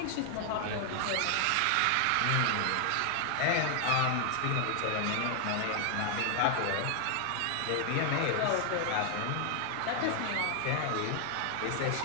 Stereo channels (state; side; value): different; both; correlation 0.00